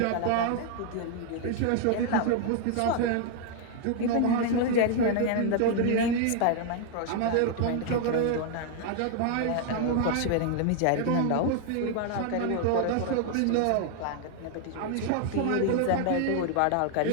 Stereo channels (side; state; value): both; different; correlation 0.00